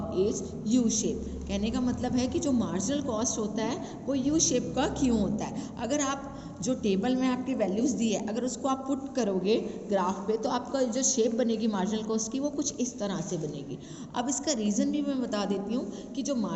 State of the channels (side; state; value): both; identical; correlation 1.00